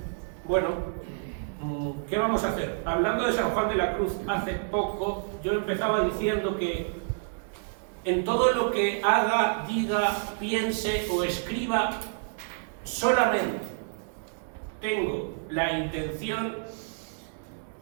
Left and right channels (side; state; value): left; silent; 59 dB below the other